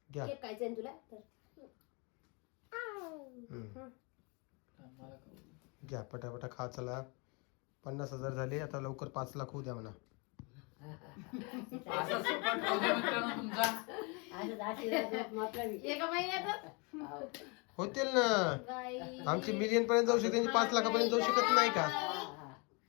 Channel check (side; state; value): right; quieter; 31.1 dB